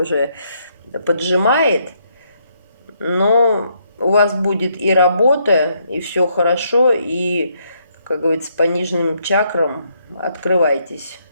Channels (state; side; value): inverted; both; correlation -0.73